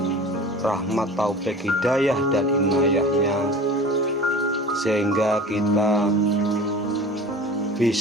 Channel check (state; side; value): normal; both; correlation 0.39